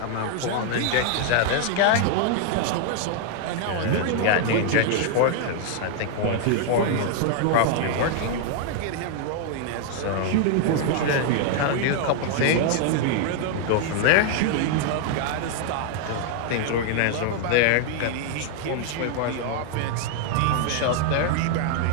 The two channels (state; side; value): different; both; correlation 0.00